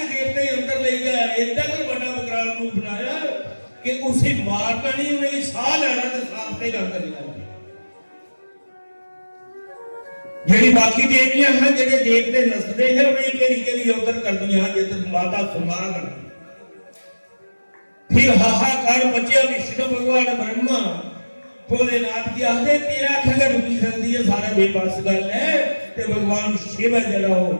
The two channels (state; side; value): inverted; both; correlation -1.00